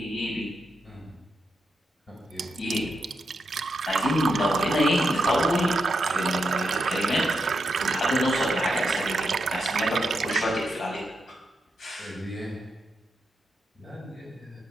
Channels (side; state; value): both; normal; correlation 0.84